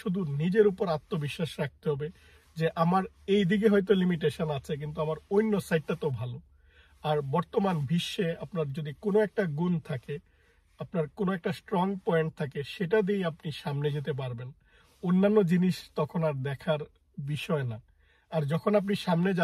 শুধু নিজের উপর আত্মবিশ্বাস রাখতে হবে যে আমার এই দিকে হয়তো লিমিটেশন আছে, কিন্তু আমার অন্য সাইডটা তো ভালো। আর বর্তমান বিশ্বে আপনার যদি কোনো একটা গুণ থাকে, আপনার কোনো একটা স্ট্রং পয়েন্ট থাকে, সেটা দিয়েই আপনি সামনে যেতে পারবেন। অন্যান্য জিনিস তখন আর দেখার বিষয় না। আর যখন আপনি সামনে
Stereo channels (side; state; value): both; identical; correlation 1.00